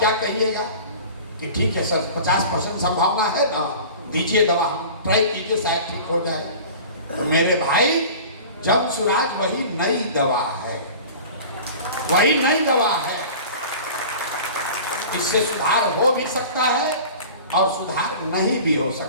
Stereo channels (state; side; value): inverted; both; correlation -0.39